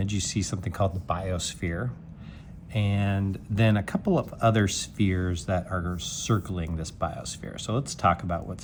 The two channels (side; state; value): both; identical; correlation 1.00